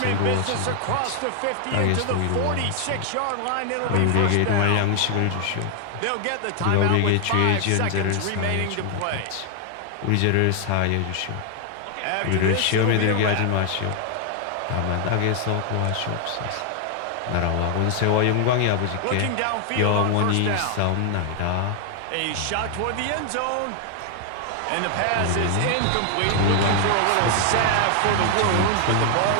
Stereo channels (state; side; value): different; both; correlation 0.00